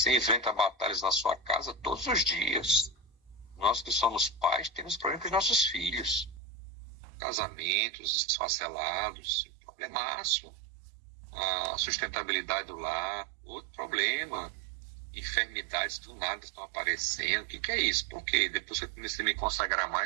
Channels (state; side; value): drops out; left; at 6.4 s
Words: enfrenta batalhas na sua casa todos os dias. Nós que somos pais temos problemas com os nossos filhos. Casamentos esfacelados, problemaço. A sustentabilidade do lar, outro problema. Enfermidades do nada estão aparecendo. O que é isso? Por quê? Depois que eu comecei a me consagrar